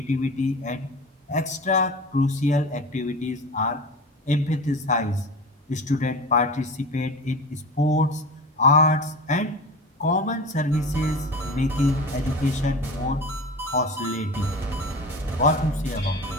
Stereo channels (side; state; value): both; normal; correlation 0.32